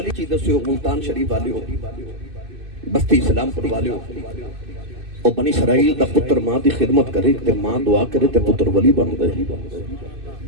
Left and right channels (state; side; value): late; left; 2.6 ms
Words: چیز سے ملتان شریف والے ہو بستی اسلام پر والے ہو اور بنی اسرائیل دا پتر ماں دی خدمت کرے تے ماں دعا کرے تے پتر ولی بن دے